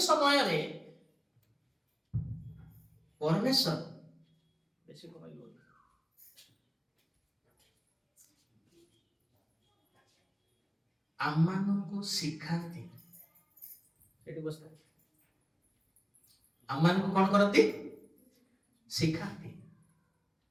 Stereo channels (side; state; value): both; identical; correlation 1.00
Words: ସମୟରେ परमेश्वर बेसी कमाइल आम्मानको शिखाती एटी बस्ता आम्मानको कौन करती शिखाती